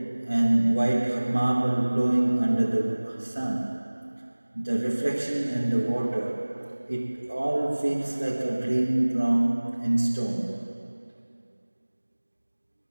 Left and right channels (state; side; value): inverted; both; correlation -1.00